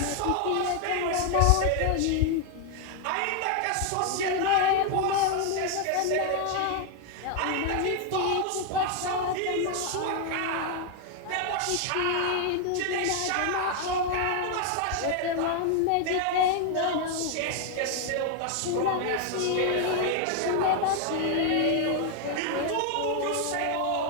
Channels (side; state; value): both; different; correlation 0.00